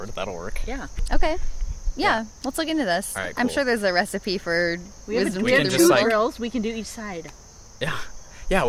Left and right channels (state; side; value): identical; both; correlation 1.00